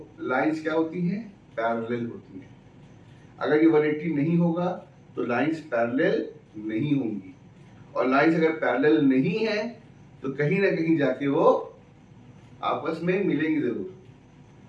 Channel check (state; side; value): identical; both; correlation 1.00